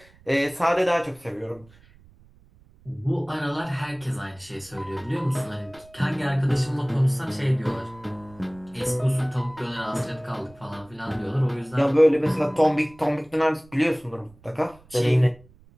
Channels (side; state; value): right; noise; rumble, 26 dB below the sound